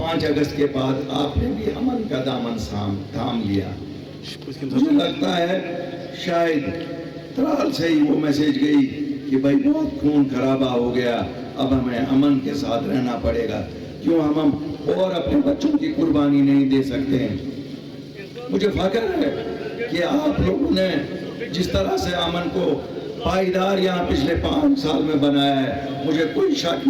5 अगस्त के बाद आपने भी अमन का दामन थाम लिया। मुझे लगता है शायद त्राल से ही वो मैसेज गई कि भाई बहुत खून खराबा हो गया, अब हमें अमन के साथ रहना पड़ेगा। क्यों हम और अपने बच्चों की कुर्बानी नहीं दे सकते हैं? मुझे फख्र है कि आप लोगों ने जिस तरह से अमन को पायदार यहाँ पिछले 5 साल में बनाया है, मुझे कोई शक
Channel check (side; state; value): both; identical; correlation 1.00